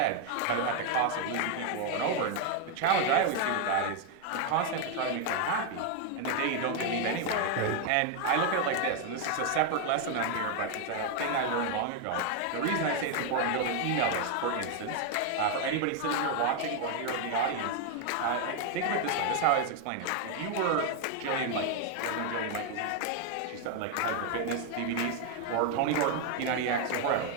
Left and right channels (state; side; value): different; both; correlation 0.01